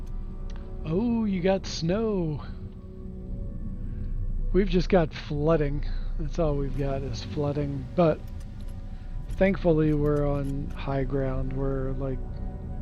got snow. We've just got flooding. That's all we've got is flooding. But thankfully we're on high ground. We're like,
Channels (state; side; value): identical; both; correlation 1.00